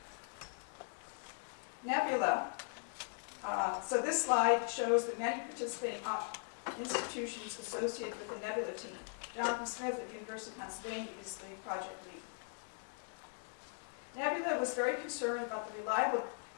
Nebula. So this slide shows the many participating institutions associated with the Nebula team. Jonathan Smith at the University of Pennsylvania is the project lead. Nebula was very concerned about the reliable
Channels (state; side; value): silent; right; 52 dB below the other